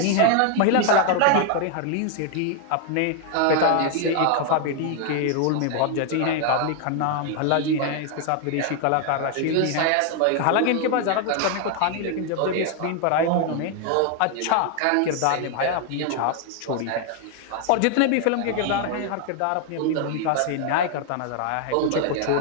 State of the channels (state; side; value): different; both; correlation 0.00